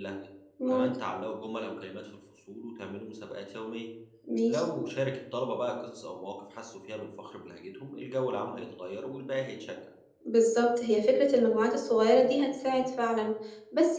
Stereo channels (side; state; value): both; identical; correlation 1.00